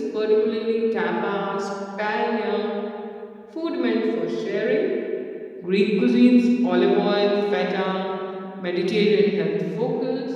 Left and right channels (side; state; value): both; identical; correlation 1.00